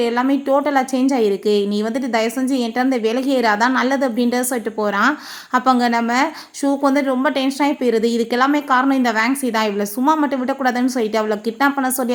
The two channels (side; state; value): both; identical; correlation 1.00